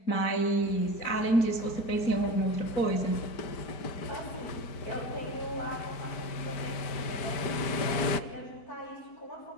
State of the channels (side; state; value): right; late; 4.6 ms